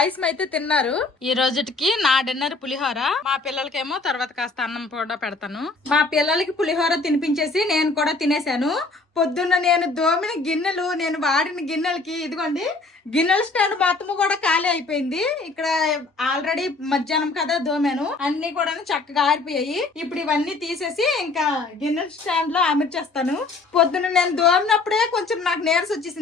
అయితే తిన్నారు. ఈ రోజుకి నా డిన్నర్ పులిహోర. మా పిల్లలకేమో తర్వాత కాస్త అన్నం కూడా పెడతాను. మా పిల్లలకి పులిహోర తినిపించేసి నేను కూడా తినేసాను. పొద్దున్న నేను దోమిన గిన్నెలు, నేను వాడిన గిన్నెలకి ఇదిగోండి గిన్నెల స్టాండ్ మొత్తము కూడా ఖాళీ అయిపోయింది. ఇక్కడ ఆల్రెడీ మధ్యాహ్నం కదా దోమాను, అన్ని కూడా చక్కగా ఆరిపోయాయి. ఇప్పుడు ఇవన్నీ తీసేసి ఇంకా గిన్నెల స్టాండ్ లో అమర్చేస్తాను. పొద్దున్న నేను దోమినప్పుడే కొంచెం నాకు నీరస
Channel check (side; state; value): right; quieter; 3.7 dB